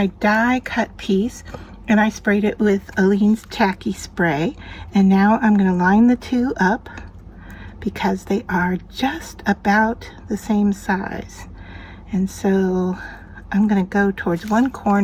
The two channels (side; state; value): both; identical; correlation 1.00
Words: die cut piece and I sprayed it with Aleene's Tacky Spray. And now I'm going to line the two up because they are just about the same size. And so I'm going to go towards one